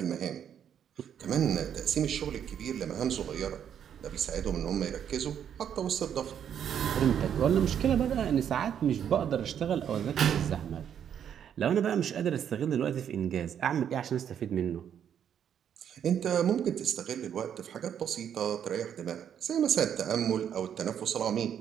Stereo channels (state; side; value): quieter; left; 8.9 dB